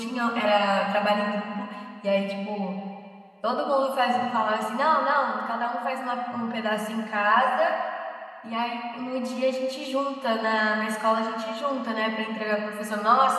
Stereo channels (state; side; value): identical; both; correlation 1.00